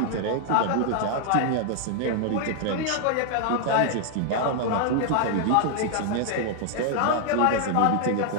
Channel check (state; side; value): different; both; correlation 0.00